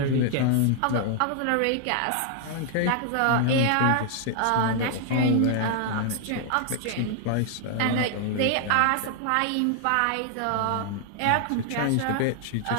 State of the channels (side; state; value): both; different; correlation 0.00